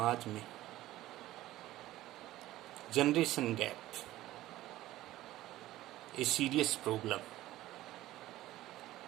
में. Generation gap a serious problem.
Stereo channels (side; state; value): left; quieter; 15.6 dB